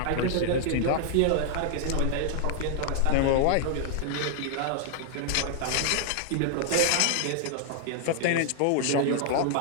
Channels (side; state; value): both; different; correlation 0.00